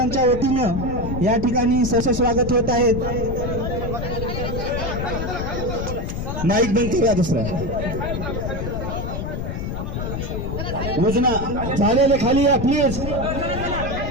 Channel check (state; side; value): noise; left; rumble, 4 dB below the sound